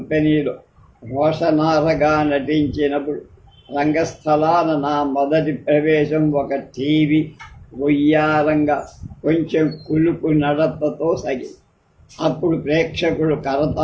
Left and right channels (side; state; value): both; identical; correlation 1.00